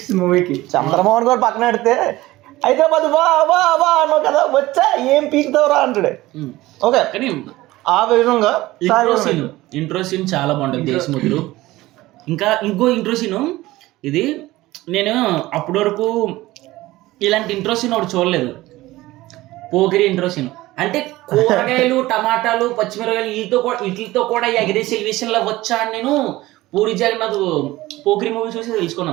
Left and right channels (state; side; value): quieter; left; 17.9 dB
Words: మూవీకి. చంద్రమోహన్ గారు పక్కన పెడితే హైదరాబాద్ వా వా వా అన్నావు కదా, వచ్చా ఏం పీకుతావురా అంటాడు. ఓకే, కానీ ఆ విధంగా ఇంట్రో సీన్ చాలా బాగుంటుంది దేశముద్రు. ఇంకా ఇంకో ఇంట్రో సీను ఇది, నేను అప్పటి వరకు ఇలాంటి ఇంట్రో సీన్ ఒకటి చూడలేదు. పోకిరి ఇంట్రో సీన్ అంటే కూరగాయలు, టమాటాలు, పచ్చిమిరకాయలు వీటితో కూడా ఎగరేసి ఎలివేషన్లో వచ్చా అని నేను పూరి జగన్నాథ్ పోకిరి మూవీ చూసి